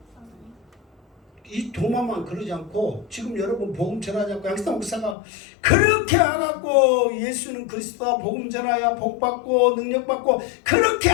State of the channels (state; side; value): drops out; right; at 5.2 s